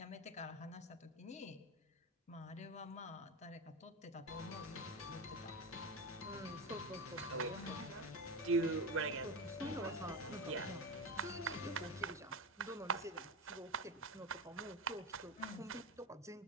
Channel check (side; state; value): both; normal; correlation 0.19